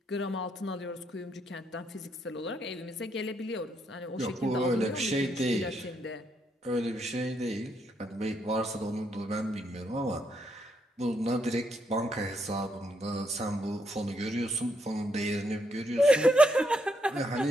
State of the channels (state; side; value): normal; both; correlation 0.76